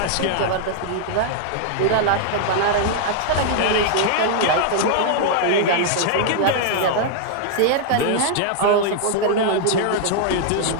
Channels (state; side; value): different; both; correlation -0.01